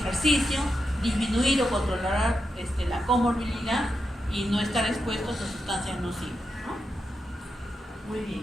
disminuir o controlar la comorbilidad y no estar expuestos a sustancias nocivas, ¿no? Muy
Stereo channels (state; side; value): normal; both; correlation 0.87